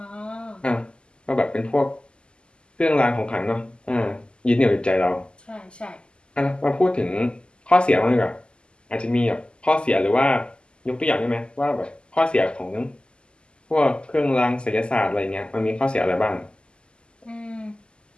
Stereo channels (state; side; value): late; right; 0.050 ms